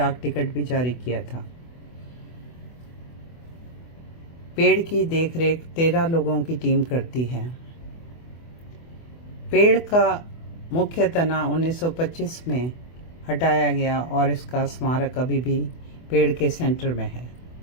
टिकट भी जारी किया था। पेड़ की देखरेख 13 लोगों की टीम करती है। पेड़ का मुख्य तना 1925 में हटाया गया और इसका स्मारक अभी भी पेड़ के सेंटर में है।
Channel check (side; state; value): right; late; 24 ms